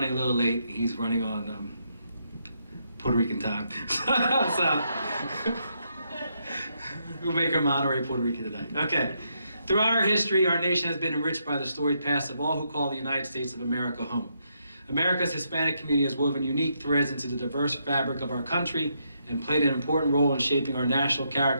a little late. He's running on Puerto Rican time. So we'll make him honorary Puerto Rican tonight. Okay. Throughout our history, our nation has been enriched by the storied past of all who call the United States of America home. America's Hispanic community has woven unique threads into the diverse fabric of our country and played an important role in shaping our national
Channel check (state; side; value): inverted; both; correlation -0.78